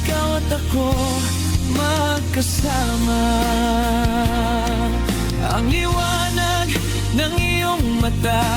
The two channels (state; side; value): identical; both; correlation 1.00